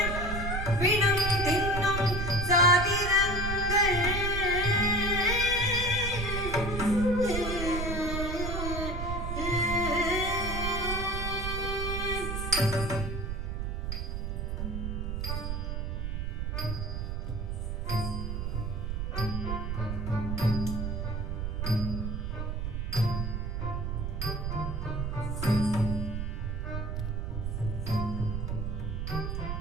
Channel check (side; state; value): right; noise; rumble, 2 dB below the sound